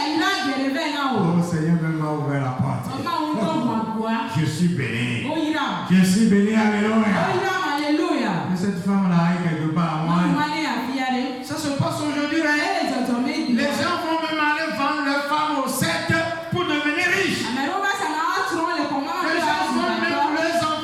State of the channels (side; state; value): both; identical; correlation 1.00